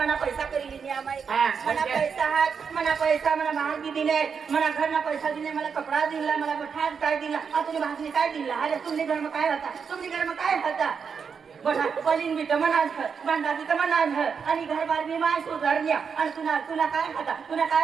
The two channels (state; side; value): quieter; left; 6.2 dB